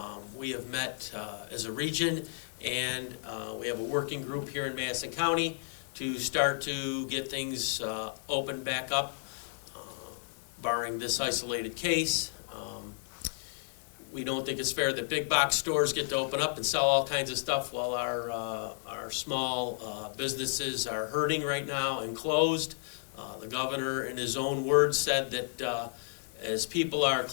We have met as a region, and we have a working group here in Madison County to start to get things opened back up, barring this isolated case. We don't think it's fair that big box stores get to open up and sell all kinds of stuff while our small businesses are hurting right now and closed. The governor, in his own words, said that as people are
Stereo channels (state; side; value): silent; right; digital silence